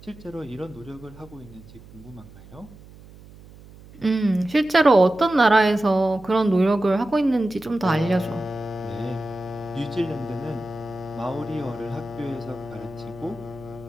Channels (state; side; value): noise; right; hum, 21 dB below the sound